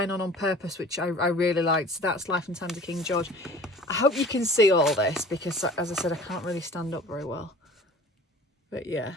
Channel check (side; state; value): both; normal; correlation 0.45